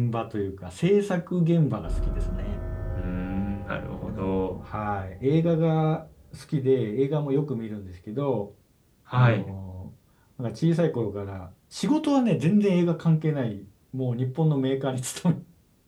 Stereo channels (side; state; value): both; identical; correlation 1.00